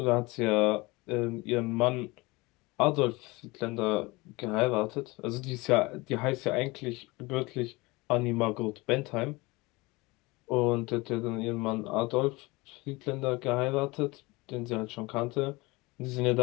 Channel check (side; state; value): right; quieter; 23.5 dB